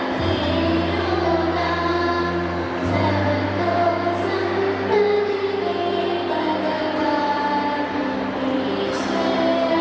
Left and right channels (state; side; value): identical; both; correlation 1.00